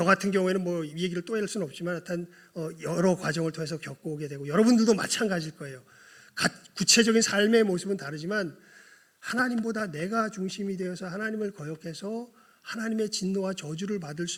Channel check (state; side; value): identical; both; correlation 1.00